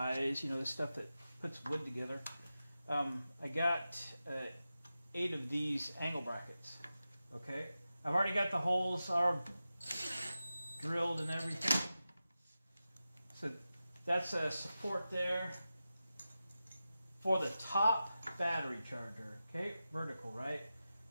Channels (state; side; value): inverted; both; correlation -0.93